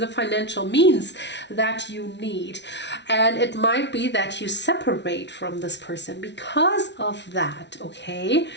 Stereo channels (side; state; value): right; late; 0.51 ms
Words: financial means that you need, and it might be that you separate from this person because of that. Okay,